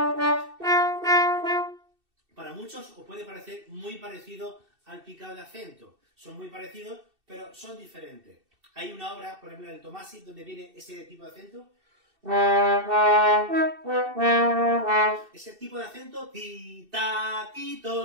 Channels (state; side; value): late; left; 2.7 ms